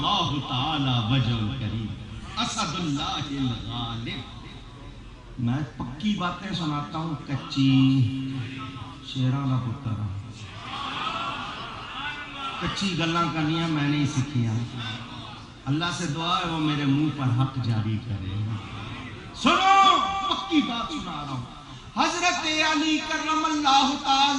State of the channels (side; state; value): both; identical; correlation 1.00